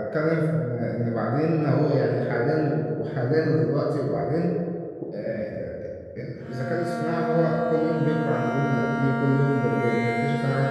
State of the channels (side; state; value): both; identical; correlation 1.00